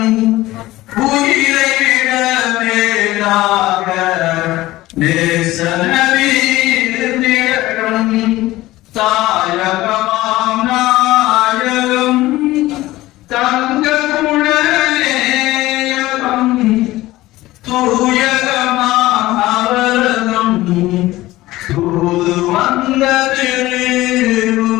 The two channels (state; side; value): quieter; right; 17.4 dB